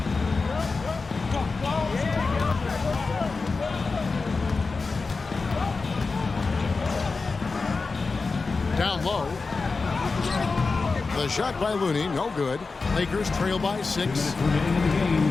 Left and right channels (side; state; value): right; quieter; 4.2 dB